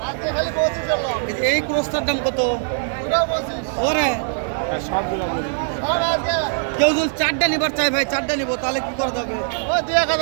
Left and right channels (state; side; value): silent; left; digital silence